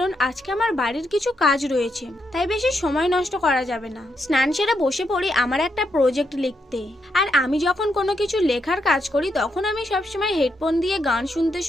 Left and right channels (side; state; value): both; normal; correlation 0.80